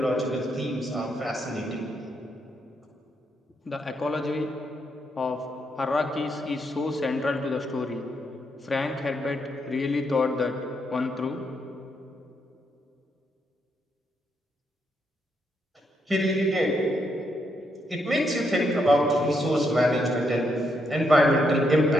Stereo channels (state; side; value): normal; both; correlation 0.78